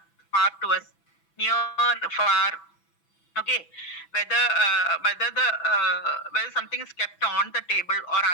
far to us, near, far. Okay, whether something is kept on the table or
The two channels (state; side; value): late; right; 6.0 ms